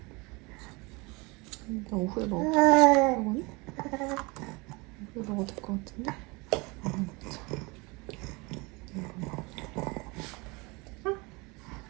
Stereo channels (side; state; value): left; quieter; 26.4 dB